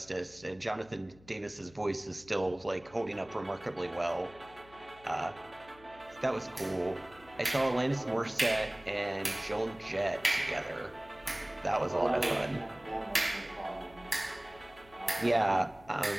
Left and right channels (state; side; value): noise; left; hum, 24 dB below the sound